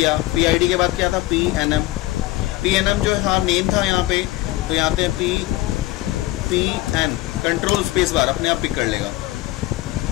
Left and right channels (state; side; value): quieter; right; 17.5 dB